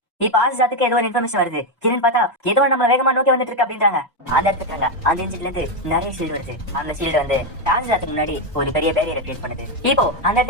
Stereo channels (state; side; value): normal; both; correlation 0.06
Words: இப்ப ஆசிஜாத்துக்கு ஏதோ ஒரு இன்ஃபர்மேஷன் வருது. கிரண் பார்த்தா ஏதோ நம்ம வேகமா நோக்கி வந்துட்டு இருக்கு அப்படின்றாங்க. அந்த இடத்துக்காங்க அந்த இன்ஜின்ல இருந்து நிறைய ஷீல்டு வருது. அந்த ஷீல்டு வந்து ஆசிஜாத்துக்கு முன்னாடி ஒரு பெரிய பேரியரை கிரியேட் பண்ணுது. இப்போ அந்த